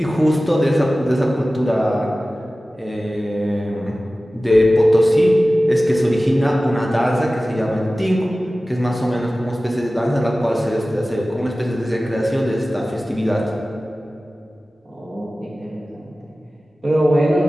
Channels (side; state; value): both; normal; correlation 0.96